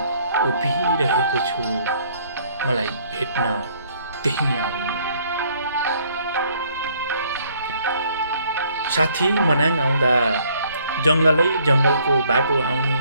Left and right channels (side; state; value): both; inverted; correlation -0.63